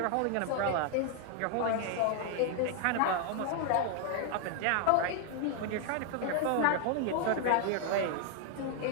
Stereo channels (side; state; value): both; different; correlation 0.00